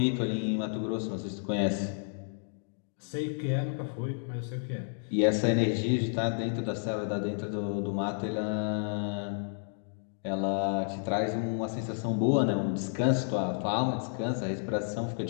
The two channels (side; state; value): right; silent; digital silence